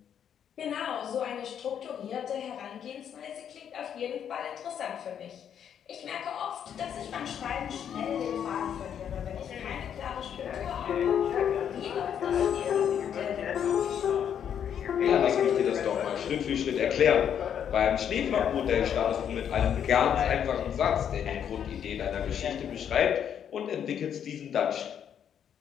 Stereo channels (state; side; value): quieter; right; 8.8 dB